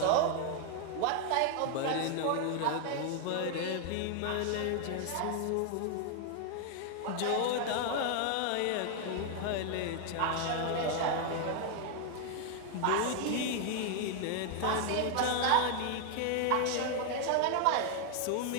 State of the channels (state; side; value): different; both; correlation 0.00